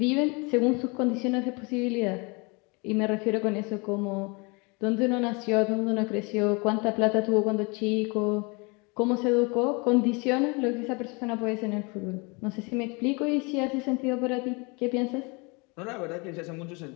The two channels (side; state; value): right; quieter; 29.5 dB